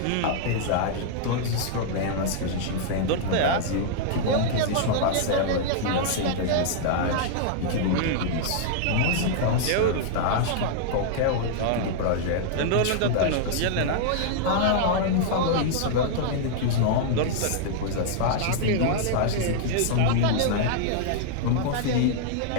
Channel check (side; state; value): both; different; correlation -0.01